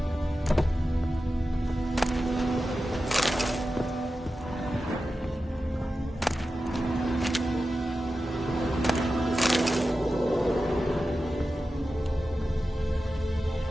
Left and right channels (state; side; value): normal; both; correlation 0.93